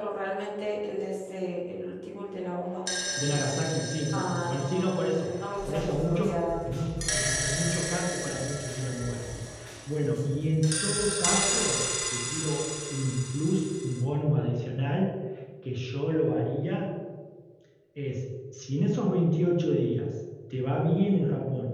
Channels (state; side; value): identical; both; correlation 1.00